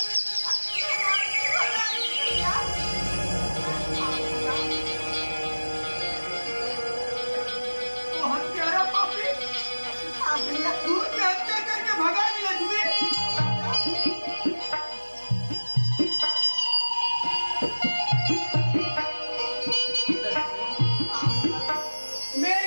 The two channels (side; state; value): both; inverted; correlation -1.00